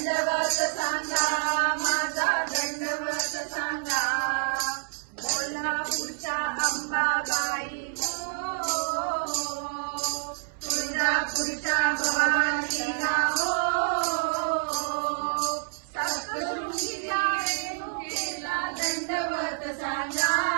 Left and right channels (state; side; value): silent; left; 59 dB below the other